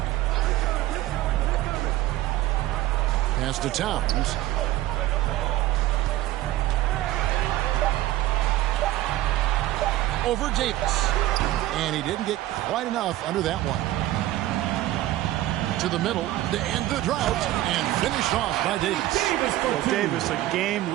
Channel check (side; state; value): left; quieter; 15.4 dB